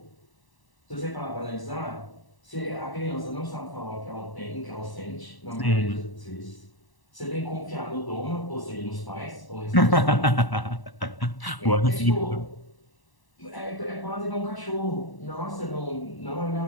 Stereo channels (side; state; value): right; late; 1.0 ms